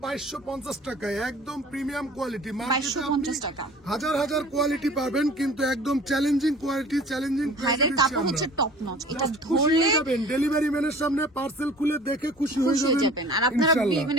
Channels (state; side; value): normal; both; correlation 0.46